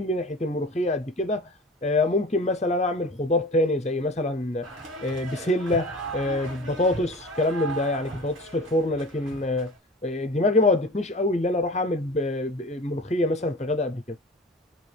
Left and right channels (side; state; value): both; normal; correlation 0.39